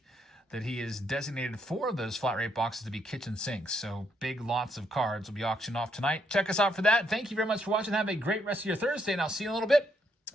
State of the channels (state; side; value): normal; both; correlation 0.75